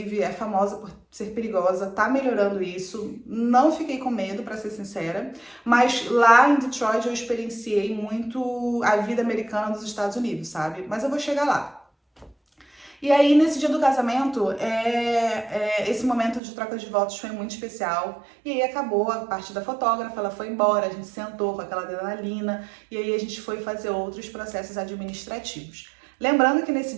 é famosa por ser perigosa, tá melhorando isso, não fiquei com medo, pra ser sincera, mas lá em Detroit eu experienciei muito a vida americana dos Estados Unidos, sabe? Mas eu vou chegar lá. E aí, nesse dia do casamento, esse momento de troca de votos foi muito especial. E aí acabou a parte da fotógrafa, ela foi embora, a gente sentou com aquela adrenalina, e aí a gente foi fazer outros processos administrativos. Lembrando que nesse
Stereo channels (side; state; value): left; drops out; at 16.4 s